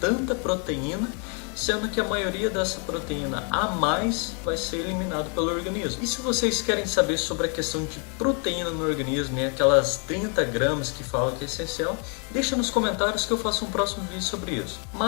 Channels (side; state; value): right; quieter; 38.1 dB